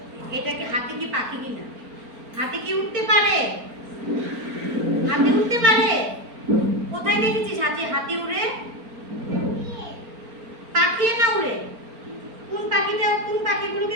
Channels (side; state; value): left; late; 4.4 ms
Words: এটা কি হাতি কি পাখি কিনা? হাতি কি উঠতে পারে? হাতি উঠতে পারে? কোথায় দেখেছিস হাতি উড়ে? পাখি না উড়ে? কোন